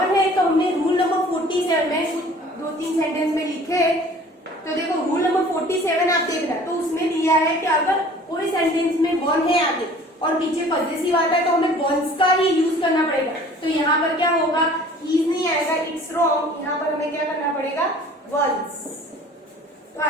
है, तो हमने रूल नंबर 47 में 2-3 सेंटेंस में लिखे। तो देखो रूल नंबर 47 आप देखना, तो उसमें दिया है कि अगर कोई सेंटेंस में वन है आगे और पीछे पॉजेसिव आता है तो हमें वंस का ही यूज करना पड़ेगा। तो यहाँ पर क्या होगा, हीज नहीं आएगा, इट्स रॉन्ग, यहाँ पर हमें क्या करना पड़ेगा, वंस। तो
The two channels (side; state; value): both; normal; correlation 0.49